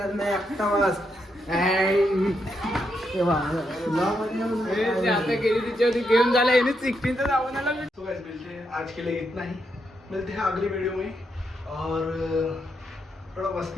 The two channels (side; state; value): both; normal; correlation 0.81